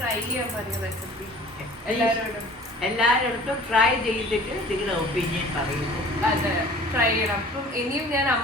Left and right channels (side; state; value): both; normal; correlation 0.46